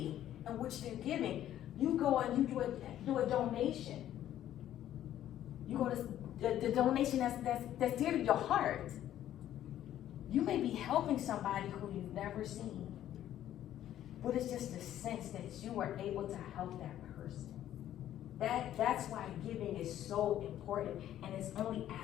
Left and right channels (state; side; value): quieter; right; 12.0 dB